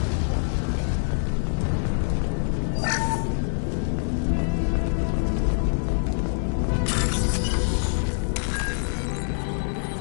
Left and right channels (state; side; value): silent; right; 62 dB below the other